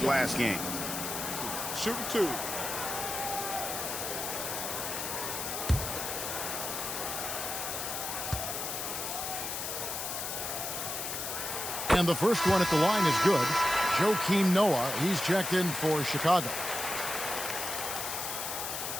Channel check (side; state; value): left; noise; hiss, 4 dB below the sound